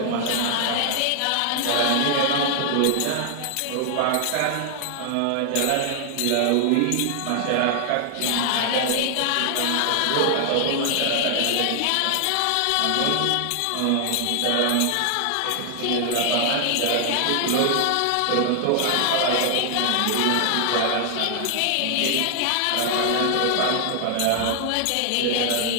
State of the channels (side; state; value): both; different; correlation 0.00